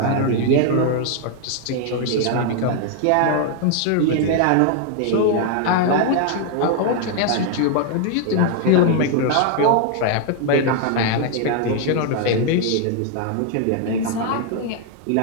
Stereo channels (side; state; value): both; different; correlation 0.00